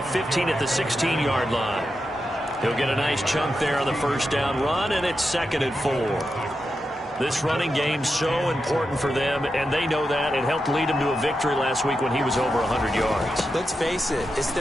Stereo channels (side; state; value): both; normal; correlation 0.88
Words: 15 at the 16-yard line. He'll get a nice chunk there on the 1st down run, and it's 2nd and 4. This running game's so important for them, and they know that. It helped lead them to a victory last week when he was over 100 yards. Let's face it, it's